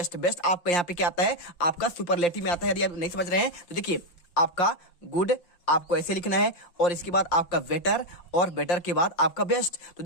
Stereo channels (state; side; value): late; right; 5.7 ms